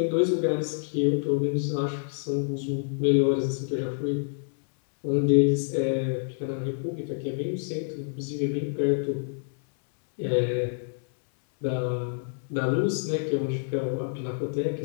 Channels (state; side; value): silent; right; 60 dB below the other